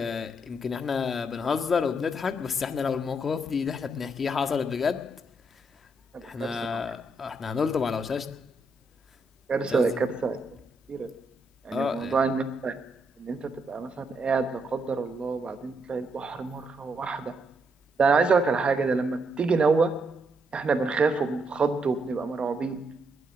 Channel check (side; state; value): both; normal; correlation 0.77